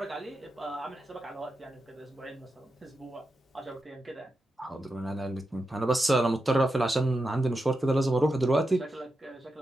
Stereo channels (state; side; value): normal; both; correlation 0.89